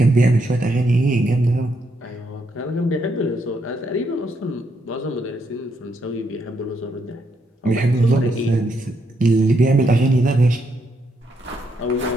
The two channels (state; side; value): normal; both; correlation 0.77